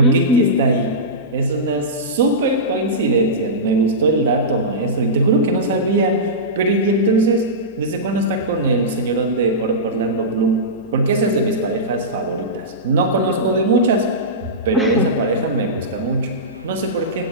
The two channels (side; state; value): left; noise; hum, 30 dB below the sound